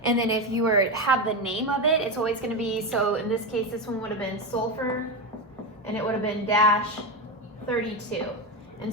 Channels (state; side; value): normal; both; correlation 0.14